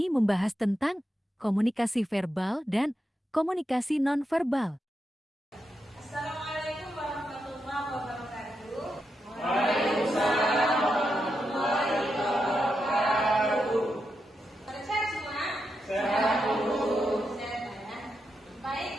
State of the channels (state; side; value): normal; both; correlation 0.86